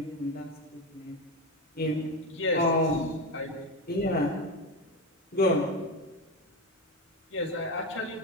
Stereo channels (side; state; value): both; normal; correlation 0.17